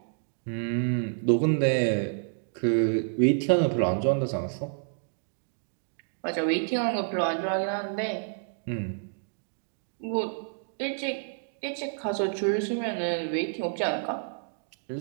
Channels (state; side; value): silent; left; digital silence